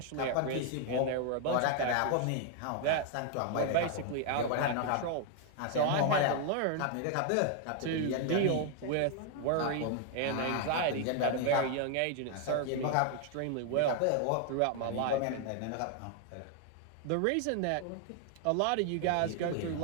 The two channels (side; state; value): both; different; correlation 0.00